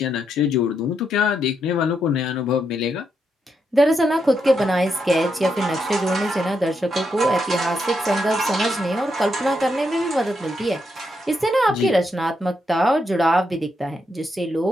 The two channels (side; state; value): both; normal; correlation 0.80